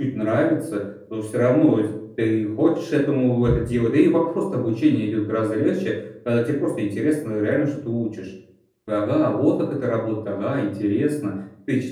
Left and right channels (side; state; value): both; identical; correlation 1.00